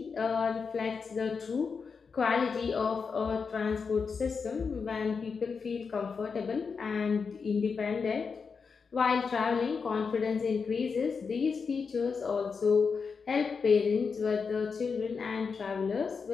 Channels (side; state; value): right; quieter; 5.4 dB